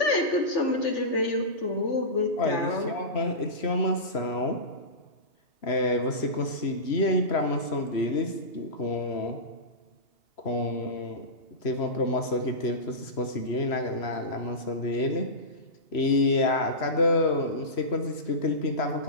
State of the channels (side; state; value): right; late; 3.0 ms